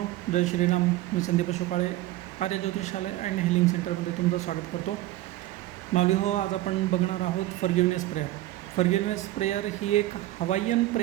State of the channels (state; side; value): quieter; left; 15.9 dB